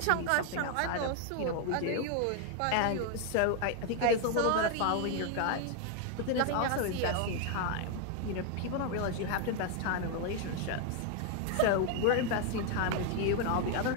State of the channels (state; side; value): different; both; correlation 0.00